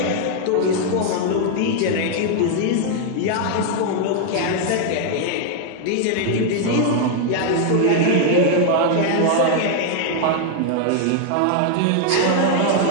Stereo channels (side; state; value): both; different; correlation 0.00